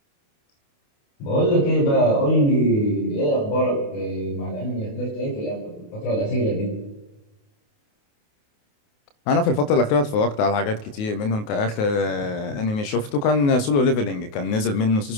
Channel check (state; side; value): late; right; 28 ms